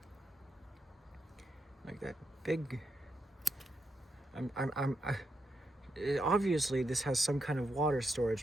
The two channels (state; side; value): normal; both; correlation 0.83